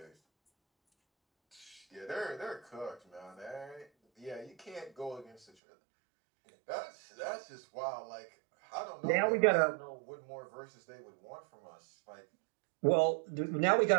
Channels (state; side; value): drops out; left; at 5.5 s